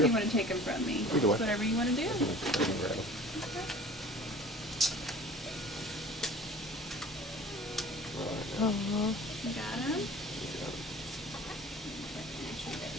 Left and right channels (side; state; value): both; normal; correlation 0.44